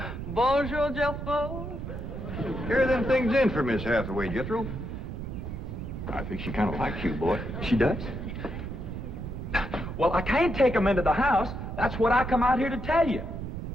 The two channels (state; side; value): noise; right; rumble, 7 dB below the sound